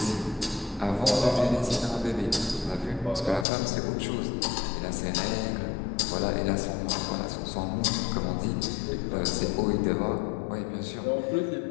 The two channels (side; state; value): right; drops out; at 3.5 s